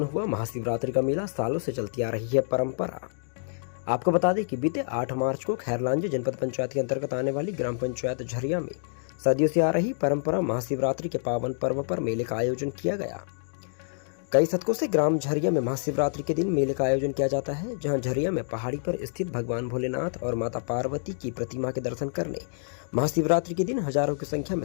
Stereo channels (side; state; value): right; silent; digital silence